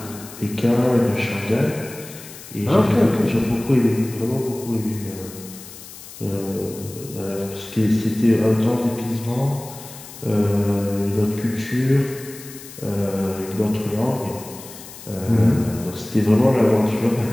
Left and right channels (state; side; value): noise; left; hiss, 16 dB below the sound